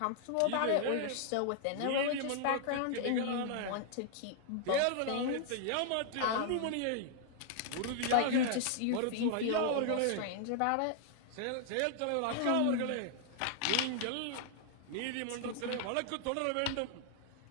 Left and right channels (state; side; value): different; both; correlation 0.00